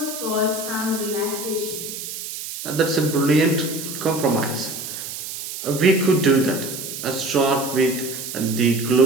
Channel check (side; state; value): right; noise; hiss, 8 dB below the sound